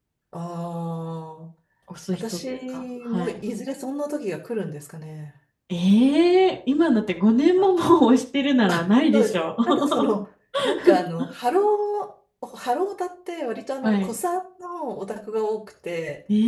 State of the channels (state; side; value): identical; both; correlation 1.00